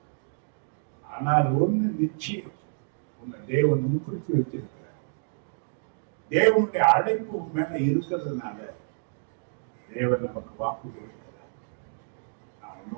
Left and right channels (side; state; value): left; silent; digital silence